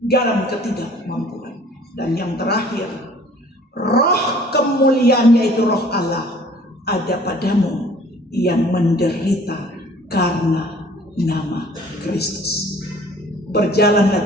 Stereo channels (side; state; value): both; normal; correlation 0.52